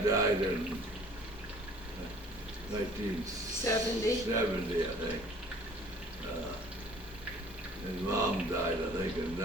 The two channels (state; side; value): normal; both; correlation 0.52